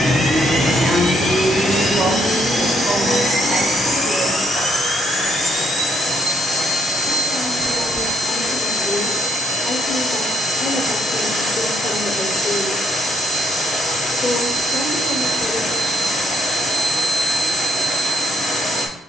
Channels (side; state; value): both; normal; correlation 0.71